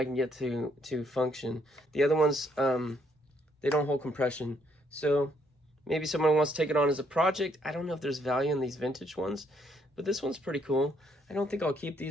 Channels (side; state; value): both; normal; correlation 0.70